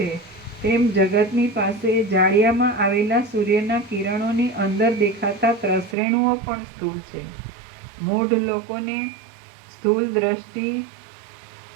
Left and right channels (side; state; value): left; drops out; at 6.0 s